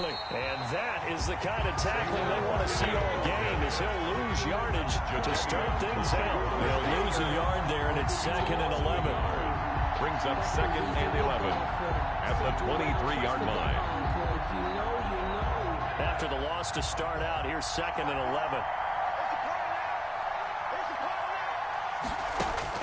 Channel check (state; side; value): identical; both; correlation 1.00